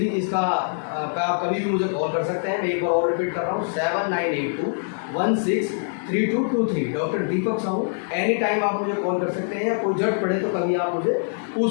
इसका पे आप कभी भी मुझे कॉल कर सकते हैं। मैं एक बार और रिपीट कर रहा हूँ 7982163223। डॉक्टर दीपक साहू। एनी टाइम आप मुझे कॉल कर सकते हैं, या कोई जरूरत पड़े तो कभी आप मुझे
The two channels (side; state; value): right; silent; digital silence